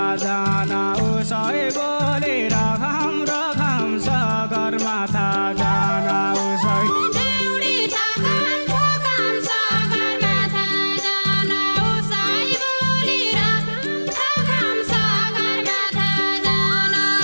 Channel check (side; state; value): both; inverted; correlation -1.00